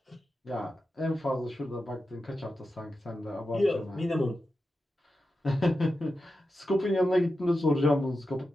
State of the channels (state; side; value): normal; both; correlation 0.90